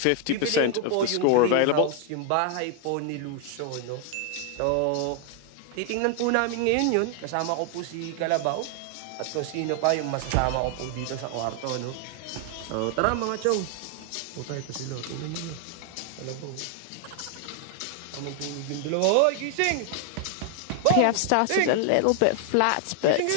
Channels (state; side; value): different; both; correlation 0.00